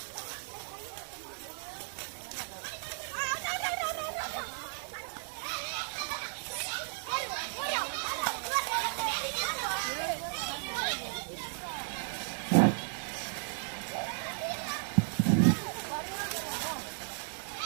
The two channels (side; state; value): left; silent; 55 dB below the other